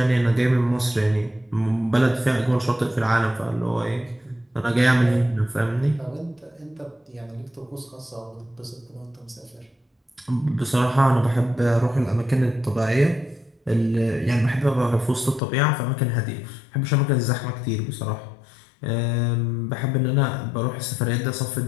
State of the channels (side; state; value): right; drops out; at 15.4 s